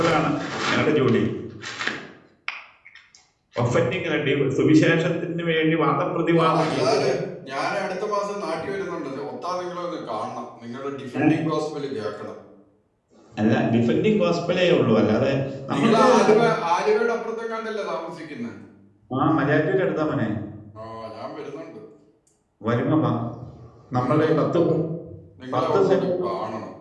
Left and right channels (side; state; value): both; identical; correlation 1.00